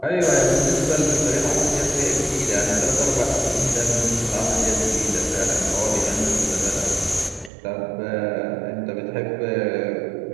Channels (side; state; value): left; drops out; at 7.5 s